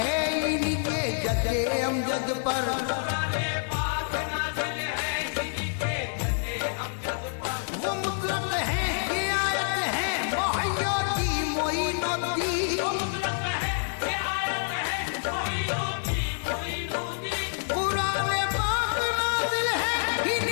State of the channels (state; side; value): silent; right; digital silence